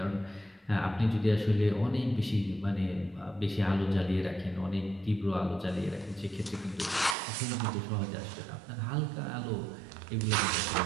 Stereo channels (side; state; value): left; drops out; at 7.2 s